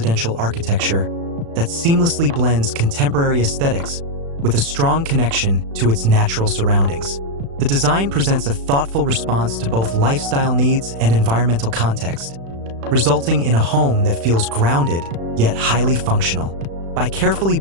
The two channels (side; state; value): left; late; 36 ms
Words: architecture that seamlessly blends contemporary aesthetics with a strong connection to its natural surroundings. The design presents a thoughtful response to both lifestyle needs and environmental context, resulting in a home that feels grounded yet highly functional. By carefully